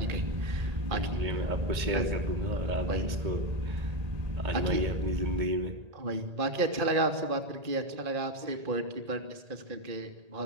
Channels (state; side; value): late; left; 1.8 ms